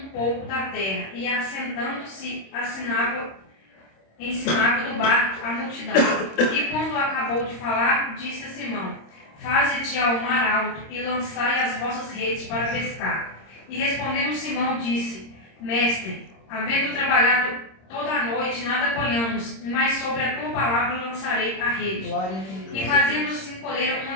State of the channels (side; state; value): right; late; 26 ms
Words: pouco da terra, e assentando-se, ensinava do barco a multidão. E quando acabou de falar, disse a Simão: Faze-te ao mar alto e lançai as vossas redes para pescar. E respondendo Simão, disse: Mestre, havendo trabalhado toda a noite, nada apanhamos, mas sobre a tua palavra lançarei a rede. E fazendo-se colheram